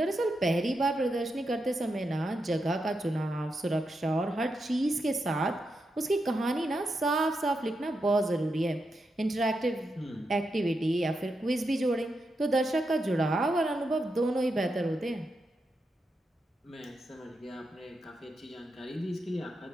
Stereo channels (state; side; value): normal; both; correlation 0.85